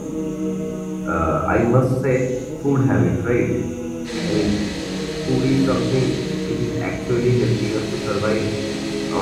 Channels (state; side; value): identical; both; correlation 1.00